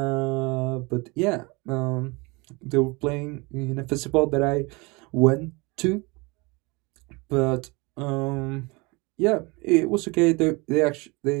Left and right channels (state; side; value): quieter; left; 26.5 dB